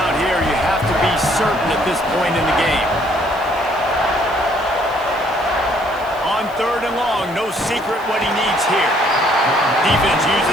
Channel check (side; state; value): left; noise; hiss, 25 dB below the sound